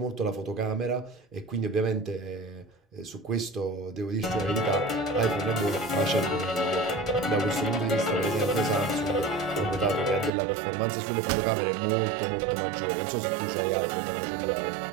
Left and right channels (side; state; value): left; drops out; at 10.3 s